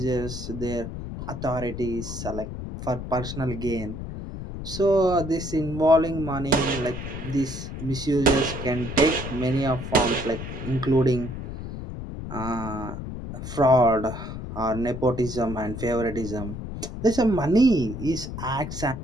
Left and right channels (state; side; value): noise; left; rumble, 8 dB below the sound